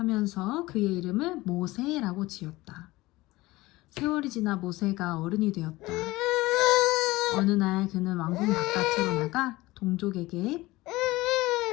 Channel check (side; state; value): right; quieter; 19.6 dB